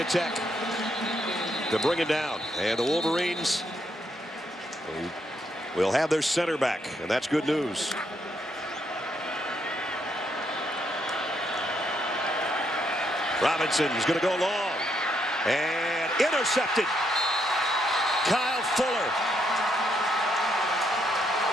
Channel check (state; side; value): normal; both; correlation 0.76